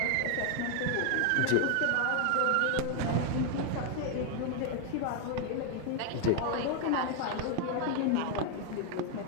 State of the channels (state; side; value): different; both; correlation 0.01